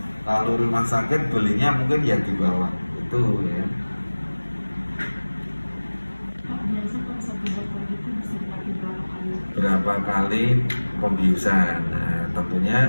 kalau rumah sakit belinya mungkin ya di bawah itu ya. Berapa kali pembiusan. Nah, tentunya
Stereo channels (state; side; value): inverted; both; correlation -1.00